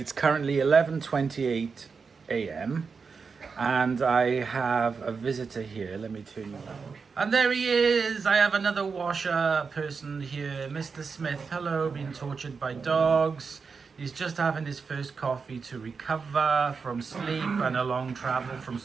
currently 11:28 a.m. and I have a visitor here. Let me turn you around. And there he is! I have another washer person here, Mr. Smith. Hello, being tortured by dogs. He's just having his first coffee to recover from sleep and a long travel from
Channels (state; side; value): quieter; left; 5.2 dB